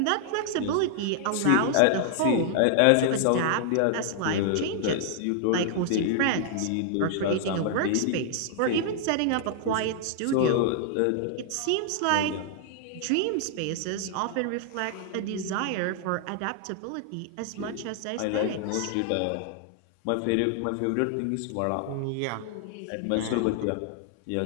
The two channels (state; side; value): different; both; correlation 0.00